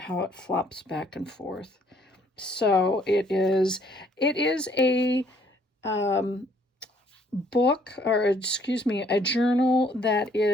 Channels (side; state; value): both; normal; correlation 0.64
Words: it flops back and forth. So it is a book, or excuse me, a journal that